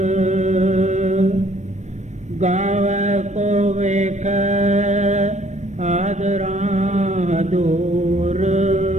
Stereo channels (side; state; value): left; late; 0.34 ms